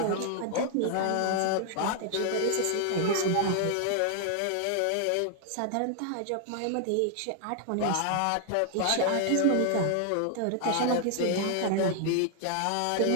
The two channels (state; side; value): different; both; correlation 0.00